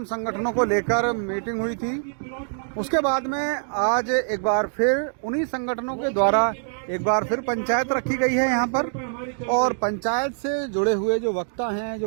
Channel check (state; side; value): silent; left; digital silence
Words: संगठनों को लेकर मीटिंग हुई थी। उसके बाद में आज एक बार फिर उन्हीं संगठनों के द्वारा एक बार फिर पंचायत रखी गई है यहाँ पर, और पंचायत से जुड़े हुए जो वक्ता हैं, जो